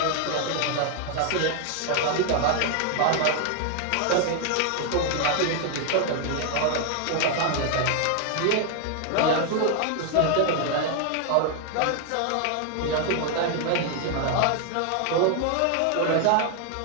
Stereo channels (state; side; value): different; both; correlation 0.00